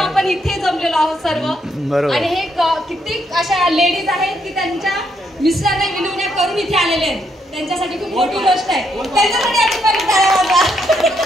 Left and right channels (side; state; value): both; normal; correlation 0.76